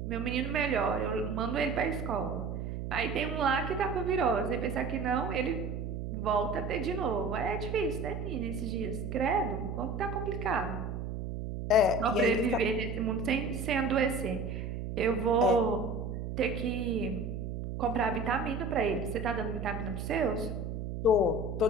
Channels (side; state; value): right; noise; hum, 5 dB below the sound